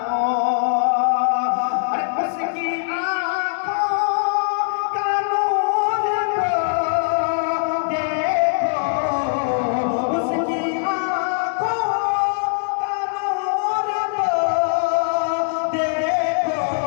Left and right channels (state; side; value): silent; right; 57 dB below the other